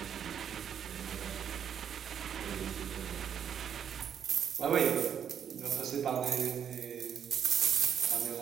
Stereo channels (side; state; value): left; quieter; 8.4 dB